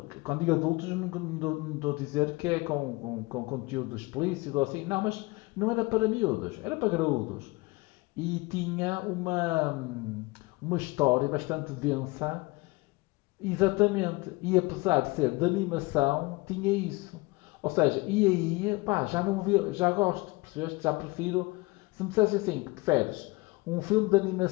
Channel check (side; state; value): right; quieter; 23.9 dB